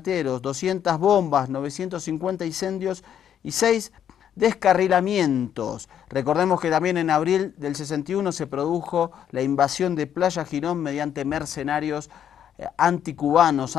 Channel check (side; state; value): right; quieter; 9.4 dB